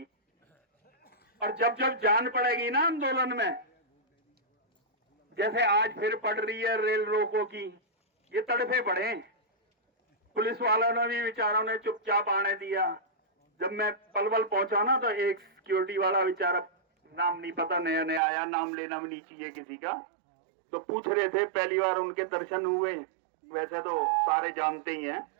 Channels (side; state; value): left; drops out; at 18.2 s